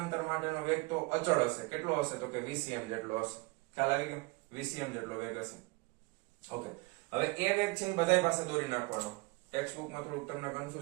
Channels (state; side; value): quieter; left; 25.2 dB